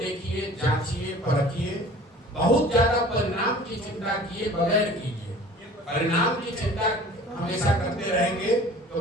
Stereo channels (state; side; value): normal; both; correlation 0.46